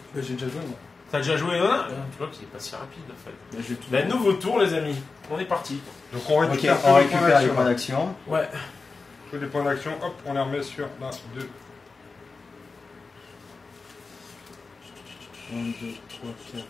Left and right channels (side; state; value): right; quieter; 4.2 dB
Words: J'ai déjà joué moi. T'as déjà joué un nain? Ouais. Tu vois qu'il est pas si rapide en fait. J'ai tout. Ben, nouveau tour les amis, on est parti. Donc on Ok, récupère, on tous les points récupère les d'action, points là. d'action. Ouais. Tous les points d'action, hop, on les remet sur là, 2. 1, 2, 3, 4,